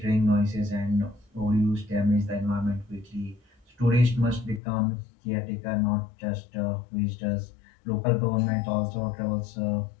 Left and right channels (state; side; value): drops out; right; at 4.6 s